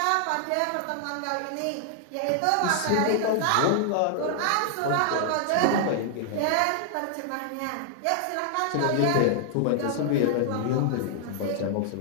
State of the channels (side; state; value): both; different; correlation 0.00